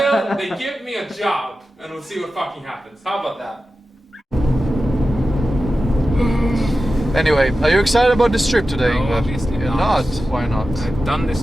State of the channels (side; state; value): both; normal; correlation 0.93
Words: they give me a job, and we'll see what fucking happens. How about that? Anyway, are you excited about this trip today? No, obviously You're not. Why not? I've done this